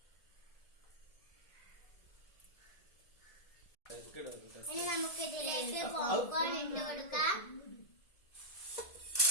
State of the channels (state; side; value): late; right; 1.7 ms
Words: ഇനി നമുക്ക് ഇതിലേക്ക് പോപ്കോൺ ഇട്ട് കൊടുക്കാം.